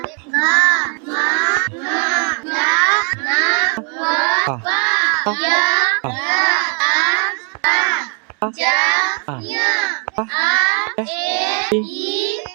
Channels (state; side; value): quieter; left; 39.8 dB